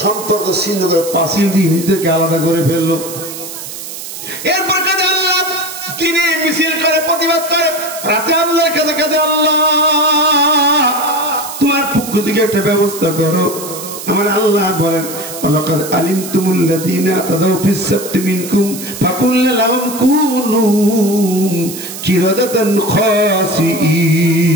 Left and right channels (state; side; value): noise; right; hiss, 10 dB below the sound